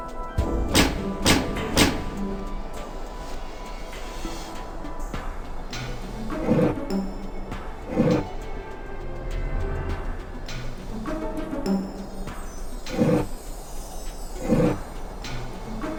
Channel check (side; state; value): both; identical; correlation 1.00